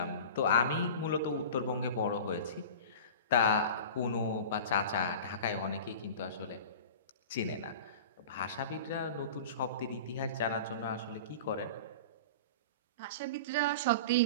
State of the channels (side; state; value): both; inverted; correlation -0.35